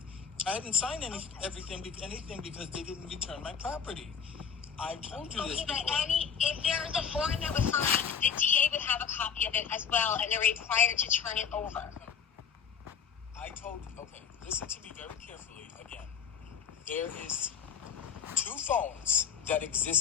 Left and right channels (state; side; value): quieter; right; 7.1 dB